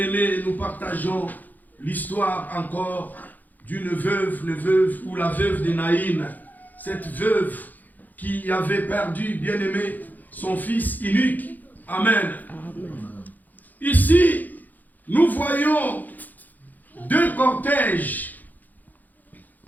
nous partageons l'histoire encore d'une veuve, ou la veuve de Naïn. Cette veuve qui avait perdu, bien-aimé, son fils unique. Amen. Ici, nous voyons deux cortèges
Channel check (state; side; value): late; right; 0.083 ms